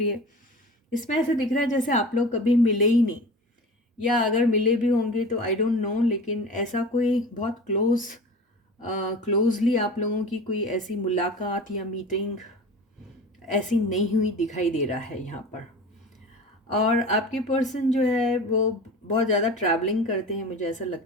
है। इसमें ऐसे दिख रहा है जैसे आप लोग कभी मिले ही नहीं, या अगर मिले भी होंगे तो आई डोंट नो, लेकिन ऐसा कोई बहुत क्लोजली आप लोगों की कोई ऐसी मुलाकात या मीटिंग ऐसी नहीं हुई दिखाई दे रहा है यहाँ पर। और आपके पर्सन जो है वो बहुत ज़्यादा ट्रैवलिंग करते हैं, मुझे ऐसा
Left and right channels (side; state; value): both; normal; correlation 0.35